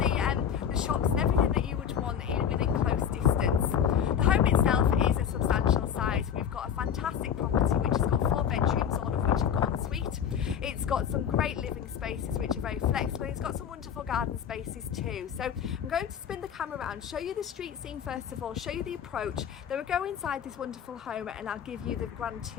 shops and everything that you would want within close distance. The home itself is a substantial size. We've got a fantastic property which has got 4 bedrooms, all of which have got ensuite. It's got some great living spaces which are very flexible. It's got some wonderful garden spaces too. So I'm going to spin the camera around, show you the street scene first of all, show you the approach, then we'll go inside this wonderful home and I'll give you the grand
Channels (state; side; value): quieter; right; 8.4 dB